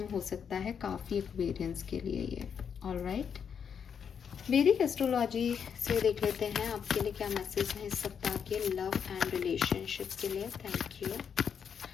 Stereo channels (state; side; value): quieter; right; 7.2 dB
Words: हो सकता है काफ़ी एक्वेरियंस के लिए ये। ऑलराइट, वैदिक एस्ट्रोलॉजी से देख लेते हैं आपके लिए क्या मैसेज है इस सप्ताह के लव एंड रिलेशनशिप के लिए। Thank you.